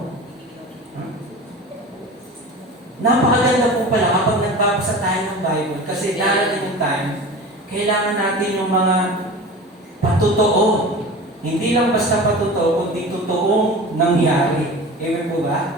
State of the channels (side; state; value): both; normal; correlation 0.35